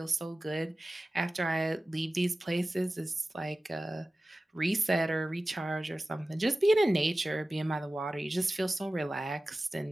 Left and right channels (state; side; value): normal; both; correlation 0.96